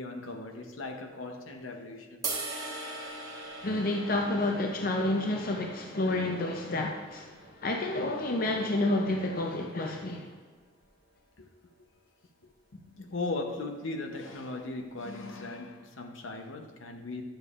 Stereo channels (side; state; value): both; normal; correlation 0.38